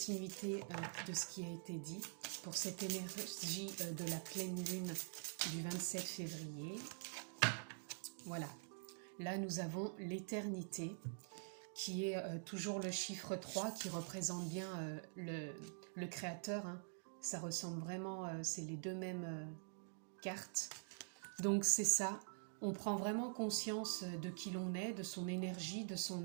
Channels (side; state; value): left; silent; digital silence